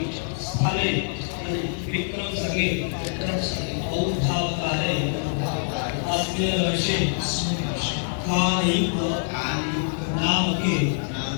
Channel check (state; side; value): silent; right; digital silence